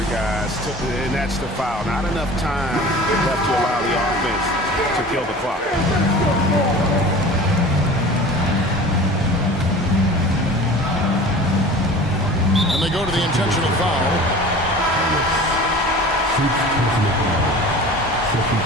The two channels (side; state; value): both; normal; correlation 0.40